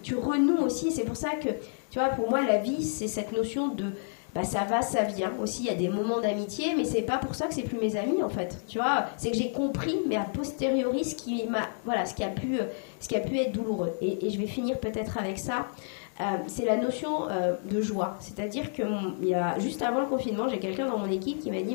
tu renoues aussi. C'est pour ça que, tu vois, pour moi la vie c'est cette notion de ça va, ça vient aussi. Il y a des moments d'amitié, mais c'est pas pour ça que c'est plus mes amis en fait, tu vois. C'est que j'ai compris, mais a posteriori, ce qui a pu être douloureux. Et je vais finir peut-être avec ça. C'est la notion de joie. C'est-à-dire que il y a juste avant le confinement, j'ai quelqu'un dans mon équipe qui m'a dit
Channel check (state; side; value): silent; right; digital silence